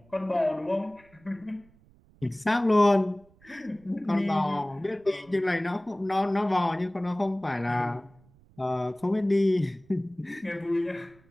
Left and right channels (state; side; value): noise; right; rumble, 29 dB below the sound